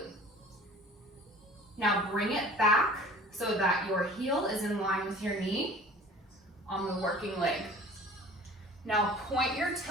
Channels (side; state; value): both; normal; correlation 0.46